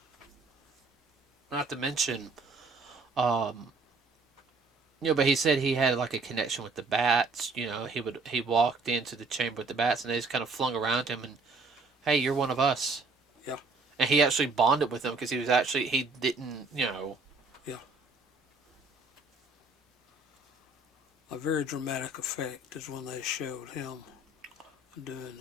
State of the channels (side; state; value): left; quieter; 3.6 dB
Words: to mention, but he said he had like a connection with the bats. He walked into the chamber with the bats, and they just kind of flung around him, and hey, you're one of us. Yeah. And he actually bonded with them because he didn't, Yeah. A very dramatic effect is when they showed him